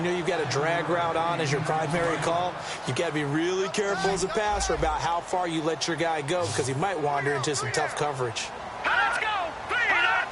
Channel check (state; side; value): identical; both; correlation 1.00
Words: know you've got a drag route on as your primary call, you've got to be really careful as a passer about how far you let your guy go because he might wander into some tough coverage. Let's go!